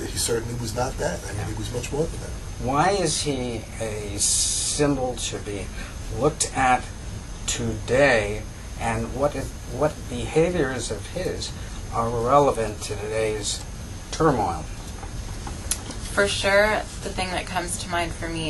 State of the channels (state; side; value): identical; both; correlation 1.00